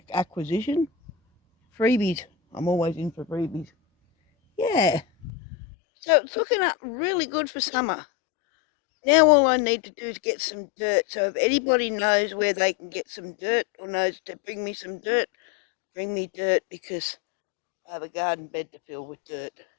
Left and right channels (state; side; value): drops out; right; at 5.3 s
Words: acquisition. Freebies. I'm always in for freebies. Yeah. So it's looking up really good for summer. Now all I need to do is get some dirt. So if anybody knows where they can get some dirt or knows to bring me some dirt, bring me dirt because I have a garden bed to fill with dirt.